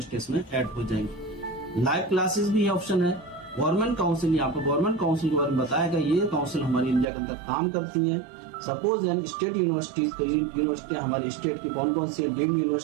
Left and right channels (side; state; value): left; drops out; at 7.1 s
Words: में ऐड हो जाएंगे। लाइव क्लासेस भी ऑप्शन है। गवर्नमेंट काउंसिल, यहाँ पर गवर्नमेंट काउंसिल के बारे में बताया गया। ये काउंसिल हमारी इंडिया के अंदर काम करती है। सपोज हम स्टेट यूनिवर्सिटी हमारी स्टेट की कौन कौन सी है, डीम्ड